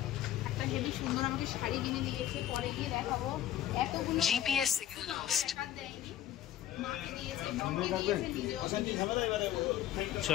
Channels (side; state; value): right; quieter; 12.0 dB